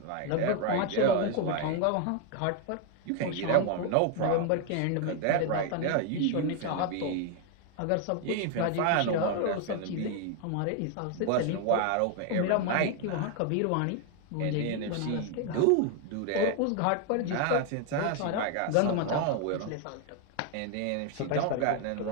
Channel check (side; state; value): both; different; correlation 0.01